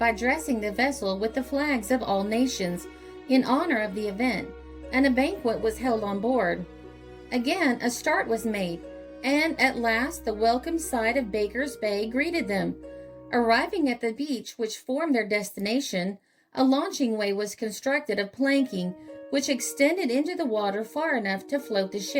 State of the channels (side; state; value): both; identical; correlation 1.00